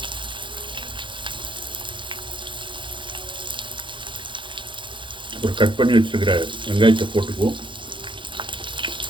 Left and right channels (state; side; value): late; left; 0.24 ms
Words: ஒரு கட் பண்ணி வச்சுருக்கிற வெங்காயத்தை போட்டுக்குவோம்.